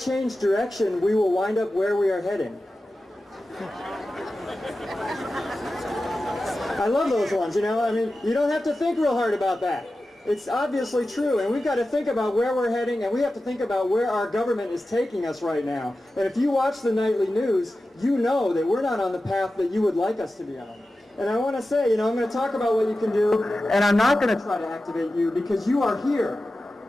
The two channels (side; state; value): both; normal; correlation 0.94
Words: direction, we will wind up where we are heading. I love those ones, you know. I mean, you don't have to think real hard about that. It's obviously true, and we've got to think about where we're heading, and we have to think about where our government is taking us right now. And if you watch the nightly news, you know that we're not on the path that you would like us to be on. And I want to say, you know, I'm going to talk about what you can do, and I'm not going to try to activate you because you are here.